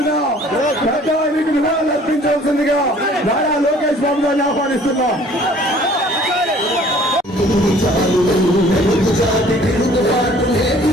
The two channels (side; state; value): both; normal; correlation 0.54